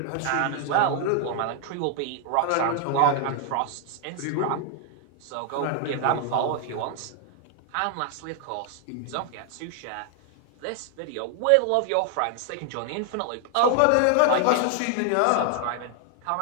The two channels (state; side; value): different; both; correlation 0.00